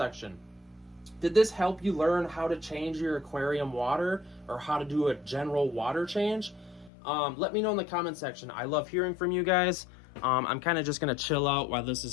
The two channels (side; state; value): right; drops out; at 6.9 s